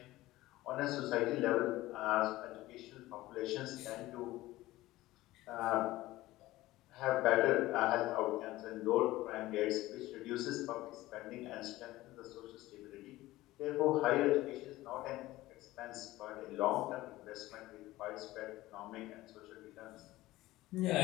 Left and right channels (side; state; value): right; quieter; 17.4 dB